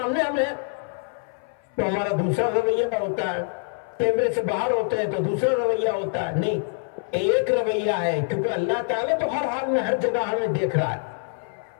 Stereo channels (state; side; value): silent; right; 58 dB below the other